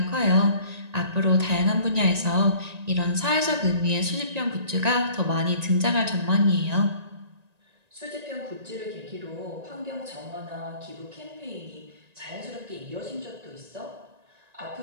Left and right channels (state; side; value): late; left; 1.9 ms